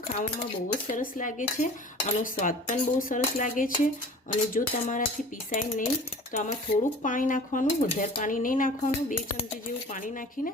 ખાવામાં બહુ જ સરસ લાગે છે, આનો સ્વાદ પણ બહુ સરસ લાગે છે. અને જો તમારાથી પીસાય નહીં તો આમાં થોડુંક પાણી નાખવાનું, વધારે પાણી નહીં નાખવાનું. 2 ચમચી જેવું પાણી નાખીને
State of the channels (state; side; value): normal; both; correlation 0.43